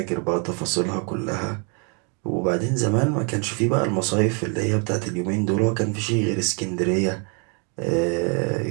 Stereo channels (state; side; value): quieter; left; 36.8 dB